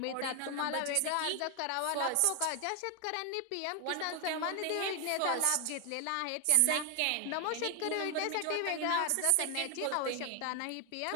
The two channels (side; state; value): both; different; correlation 0.01